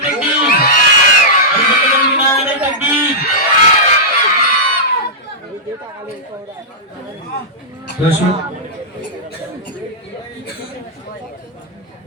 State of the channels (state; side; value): normal; both; correlation -0.13